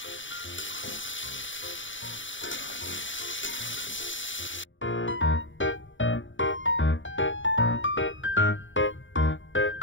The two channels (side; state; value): right; late; 0.56 ms